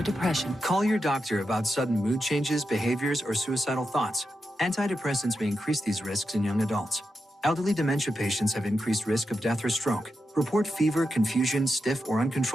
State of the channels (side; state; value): both; normal; correlation 0.87